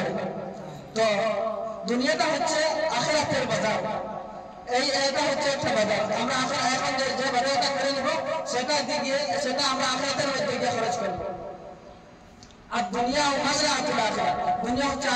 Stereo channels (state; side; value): identical; both; correlation 1.00